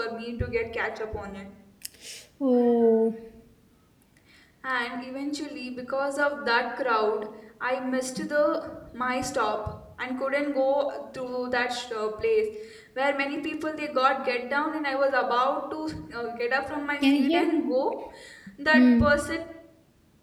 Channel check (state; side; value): identical; both; correlation 1.00